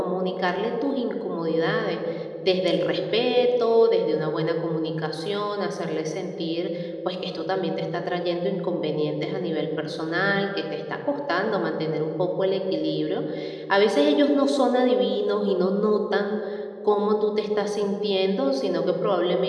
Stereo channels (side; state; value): both; identical; correlation 1.00